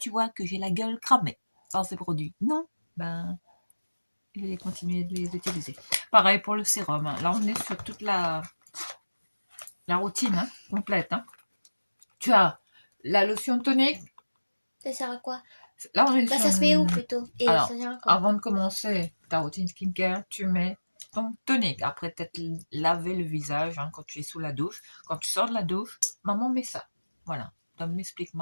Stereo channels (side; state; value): both; inverted; correlation -1.00